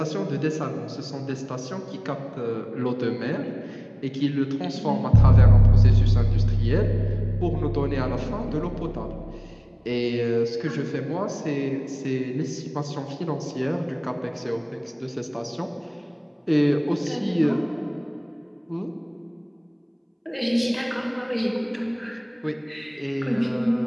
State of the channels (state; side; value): identical; both; correlation 1.00